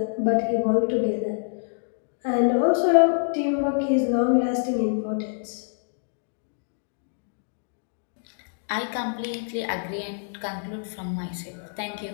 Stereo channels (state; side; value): silent; right; digital silence